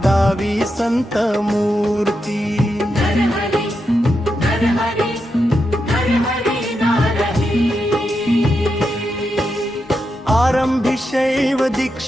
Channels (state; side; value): normal; both; correlation 0.86